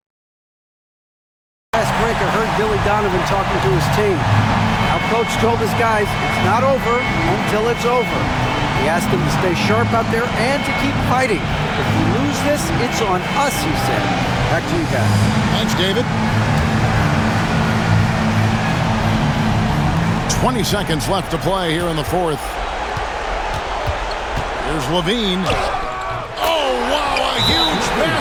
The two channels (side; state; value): both; identical; correlation 1.00